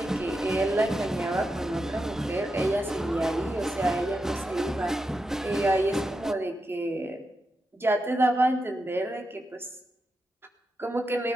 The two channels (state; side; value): normal; both; correlation 0.87